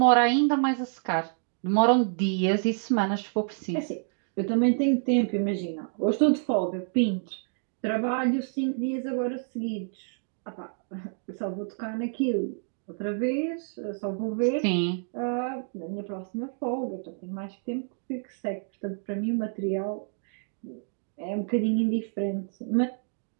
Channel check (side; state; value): left; silent; 59 dB below the other